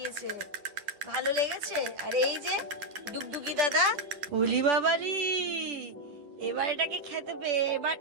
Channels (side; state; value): left; late; 10 ms